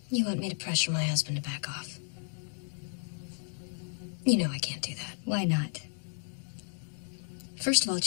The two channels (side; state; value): right; silent; 56 dB below the other